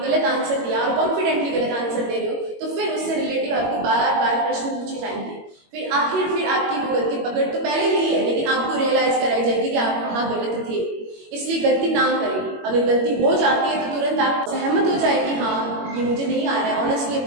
आंसर दिया और कॉन्फिडेंटली गलत आंसर दे रहे हो, तो फिर उससे रिलेटिव आपको बार बार प्रश्न पूछे जाएंगे। फिर आपकी वो गलती पकड़ तो पहले ली है, लेकिन आपको रियलाइज कराई जाएगी कि आप वहाँ गलत थे। इसलिए गलती ना करें। अगर गलती हो जाती है तो तुरंत आप सहमत हो जाए कि हाँ ये मुझे नहीं आ रहा है, ऑनेस्टली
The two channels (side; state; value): left; late; 21 ms